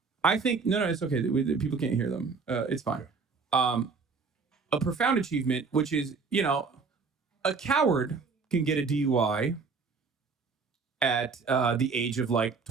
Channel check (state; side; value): quieter; left; 4.9 dB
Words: I think no, it's okay. People can't hear them. It's fine. A profound achievement, which is, a coward can get a DUI at the age of like